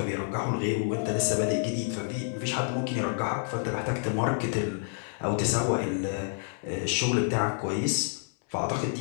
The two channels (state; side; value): silent; right; 59 dB below the other